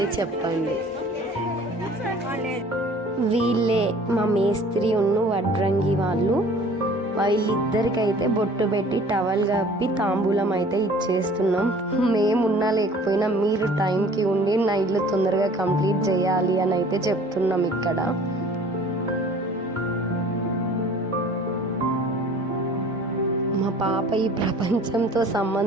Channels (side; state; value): both; normal; correlation 0.49